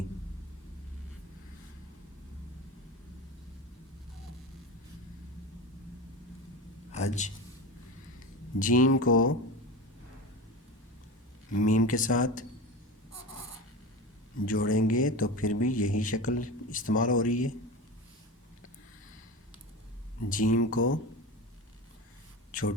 हज। जीम को मीम के साथ जोड़ेंगे तो फिर भी यही शक्ल इस्तेमाल हो रही है। जीम को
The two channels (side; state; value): both; normal; correlation 0.27